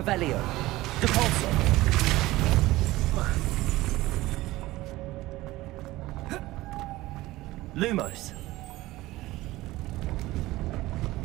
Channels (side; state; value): left; quieter; 18.0 dB